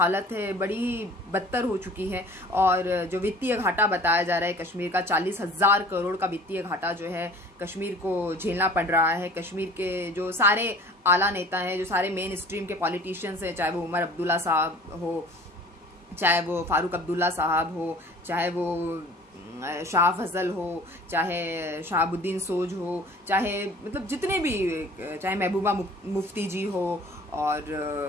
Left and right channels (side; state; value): both; normal; correlation 0.47